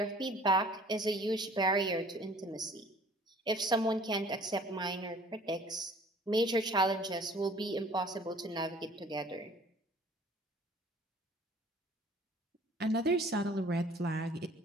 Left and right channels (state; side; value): normal; both; correlation 0.52